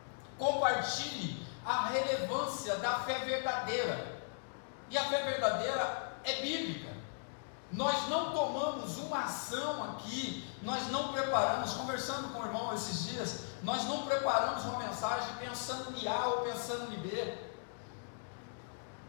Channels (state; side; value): silent; right; digital silence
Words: Compartilhe a relevância da fé verdadeira. E a fé verdadeira é bíblica. Nós não tomamos uma ação aqui, nós não preparamos, conversando com o irmão esses dias, nós não preparamos uma mensagem pensando em A ou pensando em B.